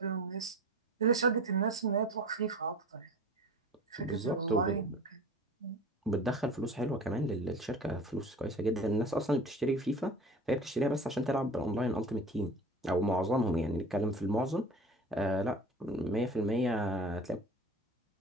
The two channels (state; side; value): normal; both; correlation 0.38